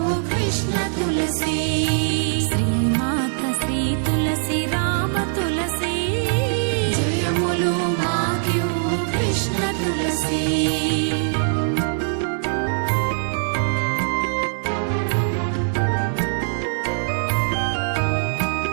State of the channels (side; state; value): left; silent; 64 dB below the other